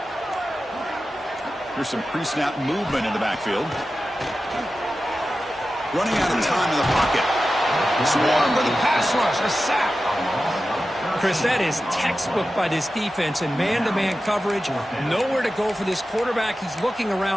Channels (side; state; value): both; normal; correlation 0.93